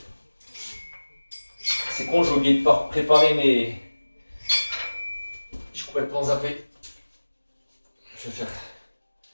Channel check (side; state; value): both; inverted; correlation -1.00